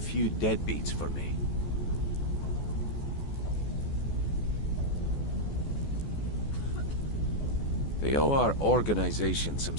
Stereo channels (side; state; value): right; late; 14 ms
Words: deadbeats for me? They owe our organization some